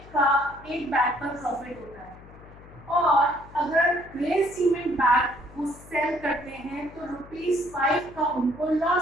का एक बैग पर प्रॉफिट होता है और अगर ग्रे सीमेंट बैग वो सेल करते हैं तो रुपीस 5 का उनको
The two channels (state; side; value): noise; left; hum, 20 dB below the sound